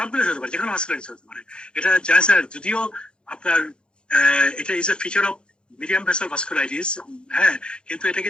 হতে পারে, যে কোনো ভাস্কুলাইটিস হতে পারে। এটা জানেন স্যার, যদিও আপনার এটা is a feature of medium vessel vasculitis, হ্যাঁ, কিন্তু এটা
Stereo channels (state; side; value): late; right; 0.052 ms